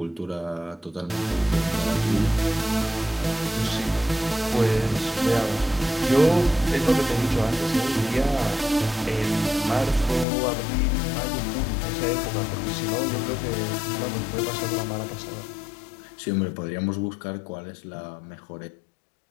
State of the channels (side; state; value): right; drops out; at 10.2 s